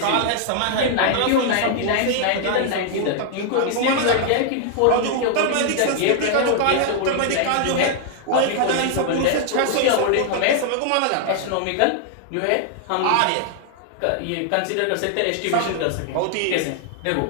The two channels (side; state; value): both; different; correlation 0.00